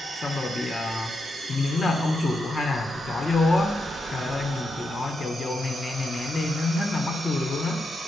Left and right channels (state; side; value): normal; both; correlation 0.84